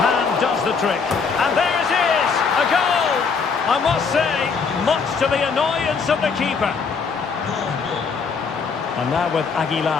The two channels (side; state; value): right; quieter; 5.3 dB